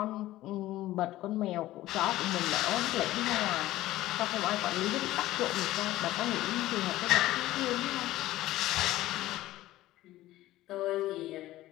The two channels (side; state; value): right; quieter; 15.8 dB